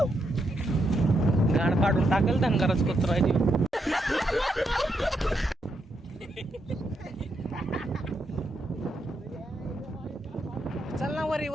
गाण फाडून टाकेल धनगरच कुत्र आहे ती. चल ना वरी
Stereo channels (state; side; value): normal; both; correlation 0.80